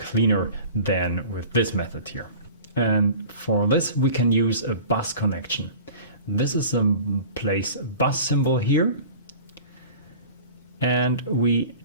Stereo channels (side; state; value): both; inverted; correlation -0.41